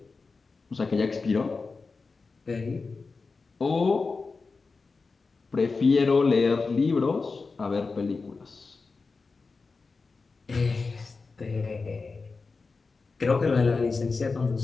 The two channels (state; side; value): quieter; right; 4.3 dB